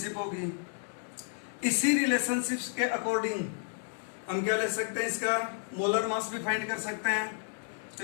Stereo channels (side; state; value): right; silent; 57 dB below the other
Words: होगी। इसी रिलेशनशिप्स के अकॉर्डिंग हम क्या ले सकते हैं, इसका मोलर मास भी फाइंड कर सकते हैं। तो